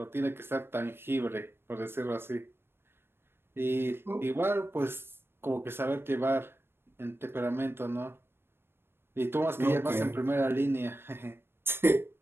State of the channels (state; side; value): late; left; 0.11 ms